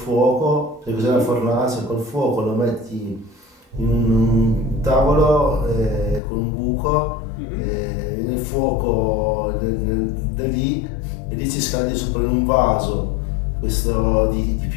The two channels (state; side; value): drops out; right; at 6.2 s